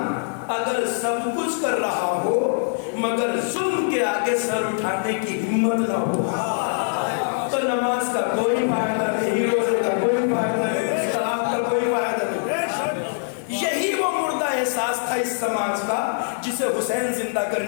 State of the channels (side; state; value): right; silent; digital silence